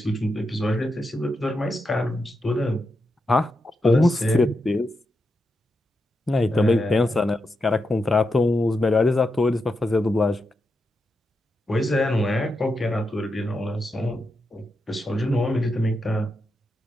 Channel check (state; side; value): normal; both; correlation 0.86